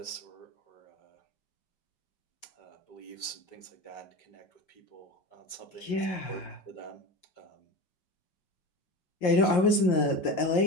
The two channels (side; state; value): right; late; 5.7 ms